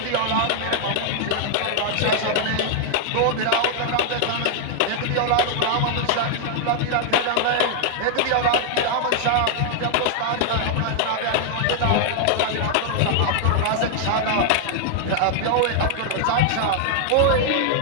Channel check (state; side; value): different; both; correlation 0.00